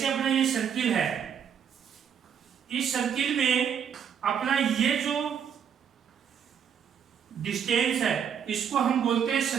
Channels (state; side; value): quieter; left; 8.0 dB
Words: अपना ये सर्किल है, इस सर्किल में अपना ये जो डिस्टेंस है इसको हम बोलते हैं